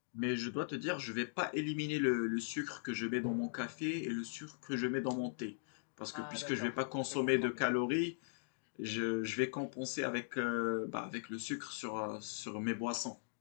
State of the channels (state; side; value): silent; right; digital silence